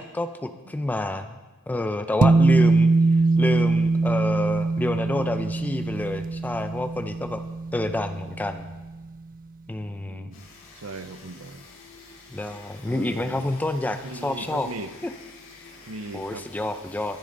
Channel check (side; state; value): both; normal; correlation 0.86